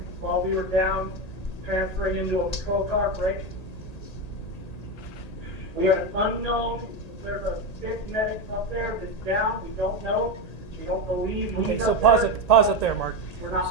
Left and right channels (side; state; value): right; late; 1.8 ms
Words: while we were down, transferring into a patrol car. Break. We are unknown. There's a fifth medic up there that's down. We don't know. We don't believe. Okay, he's so up pause there. it. Pause it there, Mark. We're